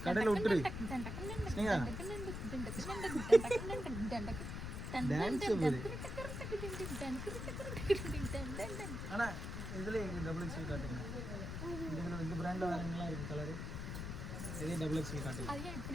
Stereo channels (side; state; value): left; noise; rumble, 5 dB below the sound